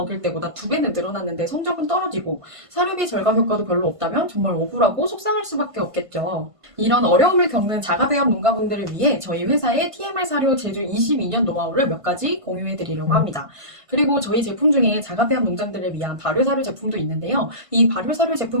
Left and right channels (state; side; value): late; left; 1.5 ms